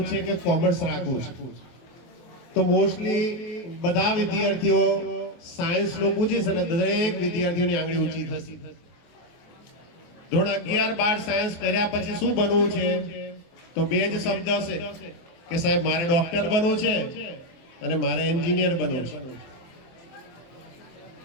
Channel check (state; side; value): late; right; 24 ms